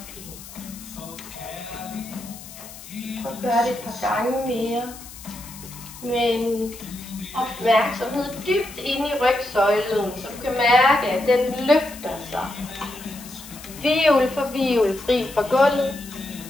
Og gør det et par gange mere. Med en opmærksomhed dybt inde i rygsøjlen, så du kan mærke, at den løfter sig. Hvirvel for hvirvel fri fra gulvet.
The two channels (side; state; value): left; noise; hiss, 16 dB below the sound